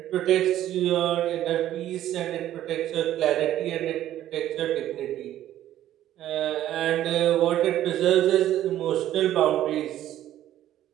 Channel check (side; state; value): left; quieter; 12.6 dB